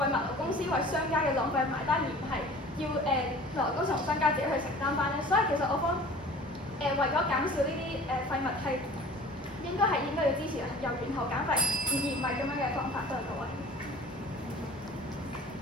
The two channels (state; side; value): normal; both; correlation 0.44